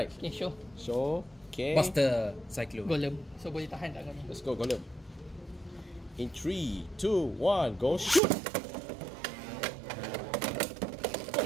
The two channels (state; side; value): drops out; left; at 8.2 s